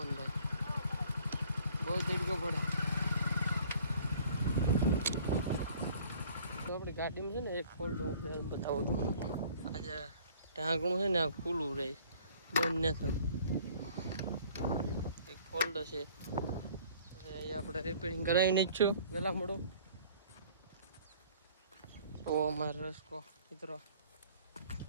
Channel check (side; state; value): both; inverted; correlation -0.54